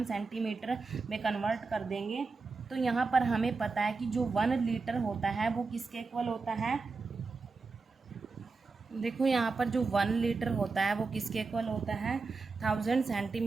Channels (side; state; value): left; quieter; 4.2 dB